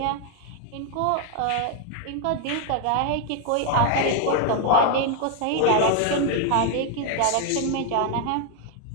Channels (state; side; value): different; both; correlation 0.00